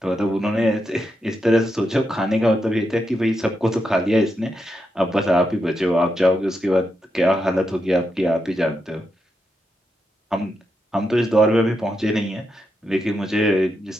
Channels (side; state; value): both; normal; correlation 0.84